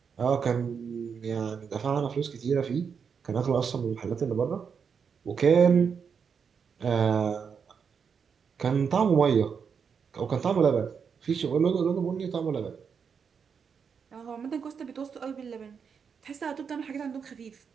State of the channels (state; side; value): quieter; left; 6.5 dB